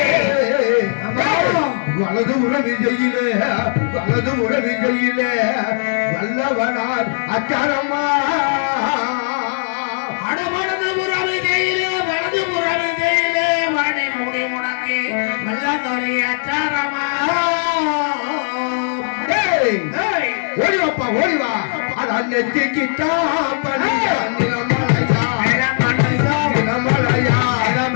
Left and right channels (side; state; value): right; silent; 60 dB below the other